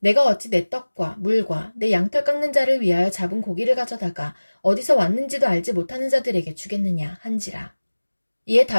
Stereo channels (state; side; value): inverted; both; correlation -1.00